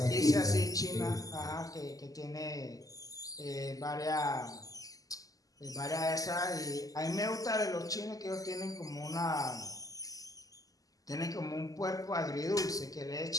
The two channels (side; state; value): right; late; 0.17 ms